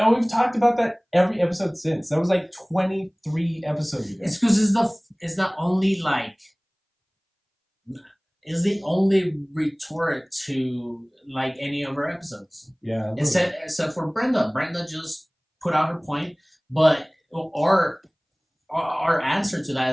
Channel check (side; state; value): both; identical; correlation 1.00